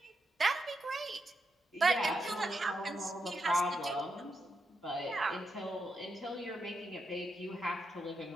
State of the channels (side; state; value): both; normal; correlation 0.83